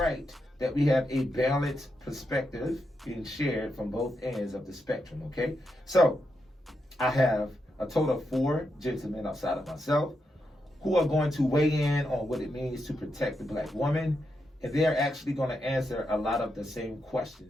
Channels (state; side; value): normal; both; correlation 0.84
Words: that we have a balanced perspective being shared from both ends of the spectrum, okay? So, I have a total of 4 gentlemen outside of myself who are going to weigh in on what it means to protect the black woman, and they're actually going to answer a lot of the same